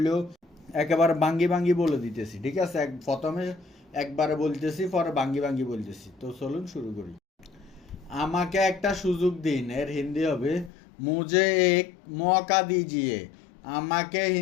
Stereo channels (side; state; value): right; drops out; at 10.7 s